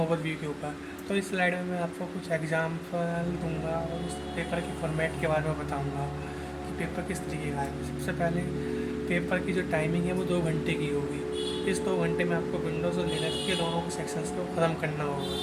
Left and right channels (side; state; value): both; identical; correlation 1.00